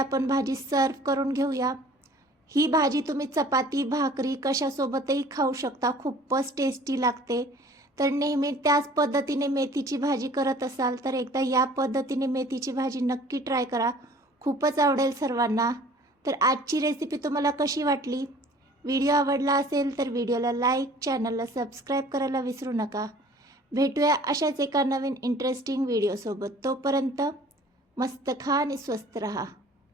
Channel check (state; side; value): normal; both; correlation 0.50